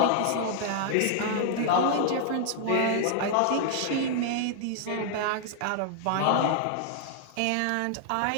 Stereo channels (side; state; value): both; different; correlation -0.01